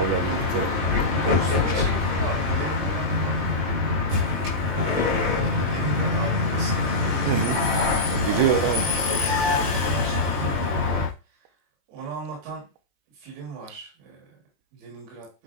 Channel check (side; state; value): left; late; 21 ms